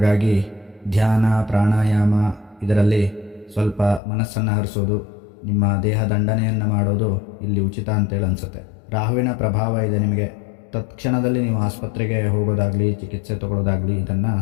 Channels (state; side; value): drops out; right; at 4.0 s